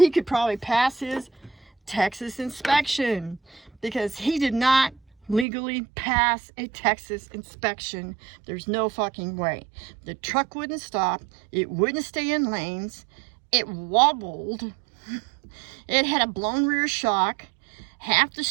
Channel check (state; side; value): drops out; left; at 5.5 s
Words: could probably pass his Texas inspection, because he did not legally pass a Texas inspection. There's no fucking way. The truck wouldn't stop. It wouldn't stay in lanes. It wobbled. It had a blown rear shock. Half the